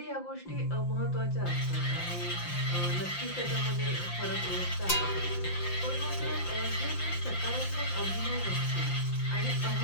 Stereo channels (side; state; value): right; late; 5.8 ms